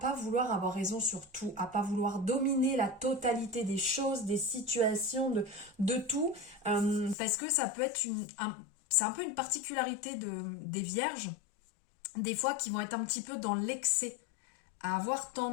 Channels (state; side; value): drops out; right; at 7.2 s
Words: vouloir avoir raison sur tout, à pas vouloir dominer la totalité des choses, des situations, de tout, parce que ça peut être c'est un peu une particularité des vierges, des fois qui vont être un petit peu dans l'excès, à avoir